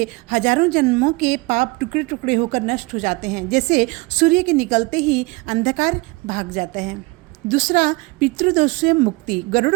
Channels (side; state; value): left; quieter; 24.5 dB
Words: हजारों जन्मों के पाप टुकड़े टुकड़े होकर नष्ट हो जाते हैं। जैसे सूर्य के निकलते ही अंधकार भाग जाता है। दूसरा, पितृदोष से मुक्ति। गरुड़